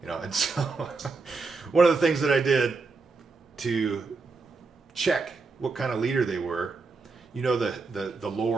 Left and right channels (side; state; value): left; quieter; 4.2 dB